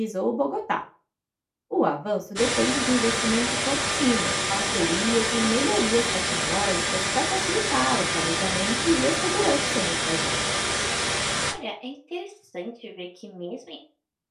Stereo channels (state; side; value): identical; both; correlation 1.00